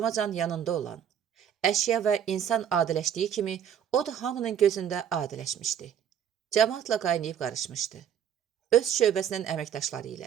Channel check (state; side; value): quieter; left; 8.9 dB